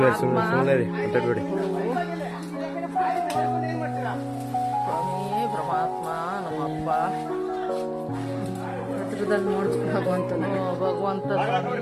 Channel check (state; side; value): identical; both; correlation 1.00